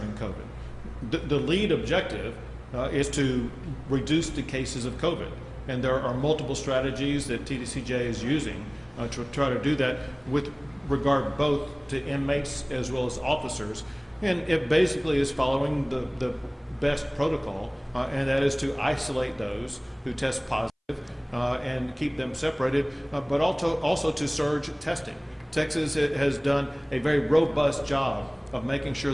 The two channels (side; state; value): both; identical; correlation 1.00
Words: COVID. The lead objective is to reduce the cases of COVID. And there are multiple strategies that TDCJ is using to try to do that with regard both to inmates as well as officers. And it basically is following the best protocol, and that is to isolate those who test positive and keep them separated, but also to surge testing. Texas has done a very robust job of making sure